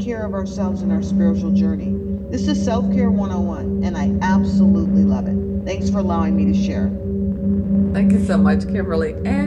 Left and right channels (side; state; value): both; identical; correlation 1.00